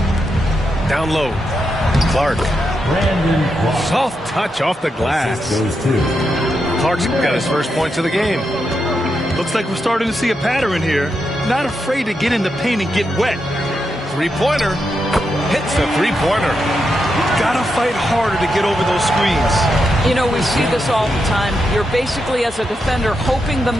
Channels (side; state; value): both; normal; correlation 0.85